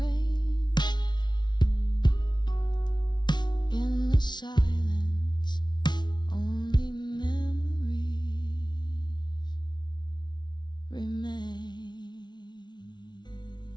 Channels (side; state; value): right; late; 0.21 ms